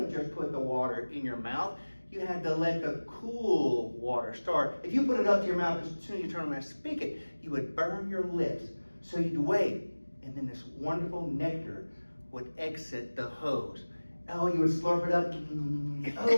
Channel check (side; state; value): both; inverted; correlation -1.00